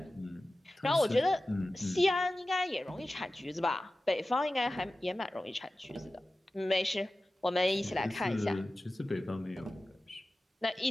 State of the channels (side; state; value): both; normal; correlation 0.95